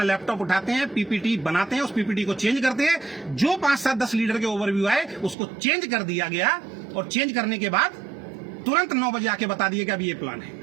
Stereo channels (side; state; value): left; drops out; at 5.4 s